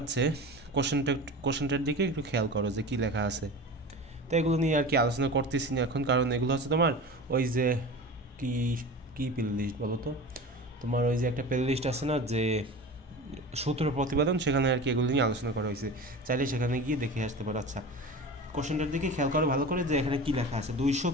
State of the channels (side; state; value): both; normal; correlation 0.33